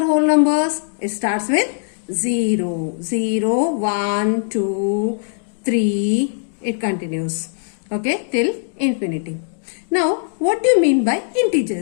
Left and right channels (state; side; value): silent; right; digital silence